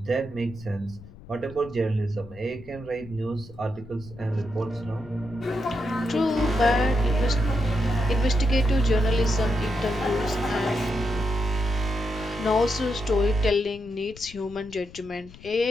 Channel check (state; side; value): noise; left; rumble, 19 dB below the sound